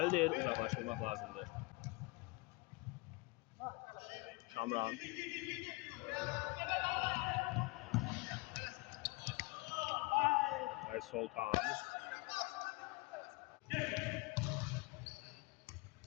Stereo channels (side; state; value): right; quieter; 25.2 dB